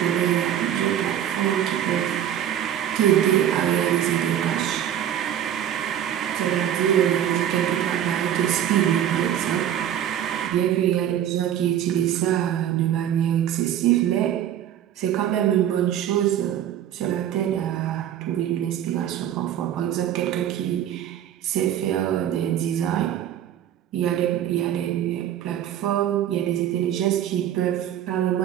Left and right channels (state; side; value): quieter; left; 10.6 dB